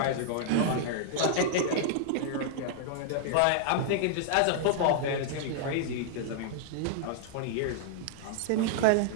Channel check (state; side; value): different; both; correlation -0.01